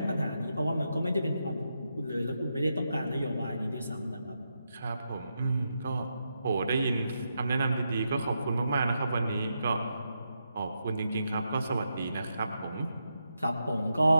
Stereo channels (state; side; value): inverted; both; correlation -0.84